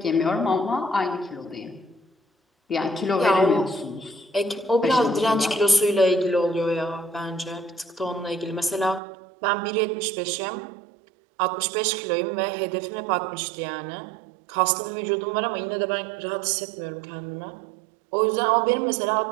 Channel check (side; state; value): left; drops out; at 9.0 s